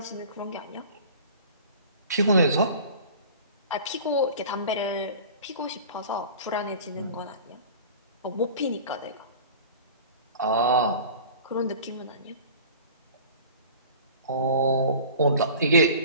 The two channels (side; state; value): both; inverted; correlation -0.41